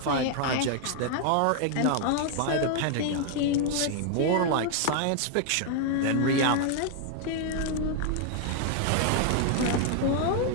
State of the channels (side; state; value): both; different; correlation 0.00